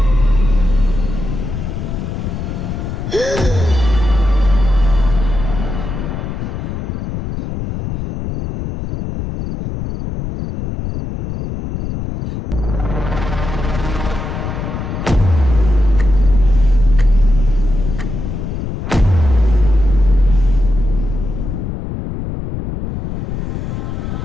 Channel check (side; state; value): left; noise; rumble, 5 dB below the sound